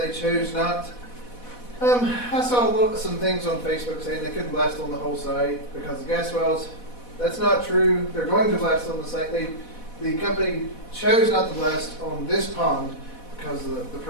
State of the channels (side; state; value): right; late; 4.1 ms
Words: chose not. I saw some things on Facebook saying they couldn't blast on the whole site because of gas wells. That's not true. They're going to blast on the site. The company chose not to blast on this pond because of the